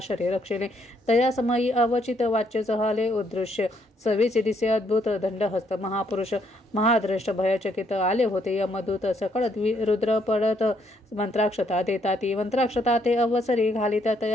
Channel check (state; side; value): normal; both; correlation 0.71